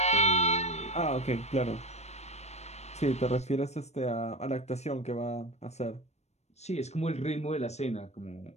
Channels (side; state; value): right; late; 0.32 ms